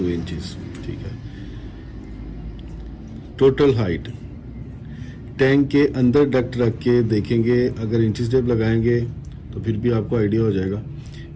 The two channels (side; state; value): both; identical; correlation 1.00